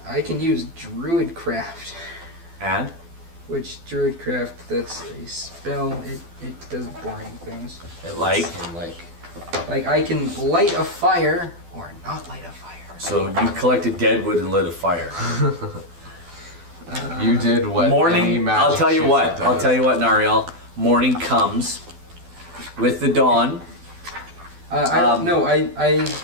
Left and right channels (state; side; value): late; left; 12 ms